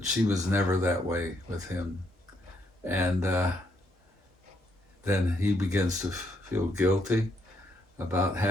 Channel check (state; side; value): normal; both; correlation 0.74